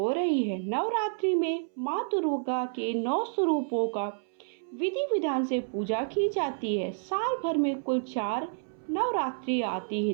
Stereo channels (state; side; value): silent; left; 58 dB below the other